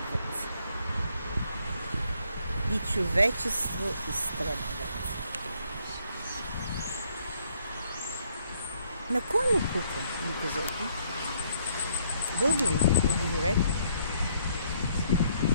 И човечество изтребват. На кой му пука, ми кажете? Българи, отговорете.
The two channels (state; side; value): inverted; both; correlation -0.69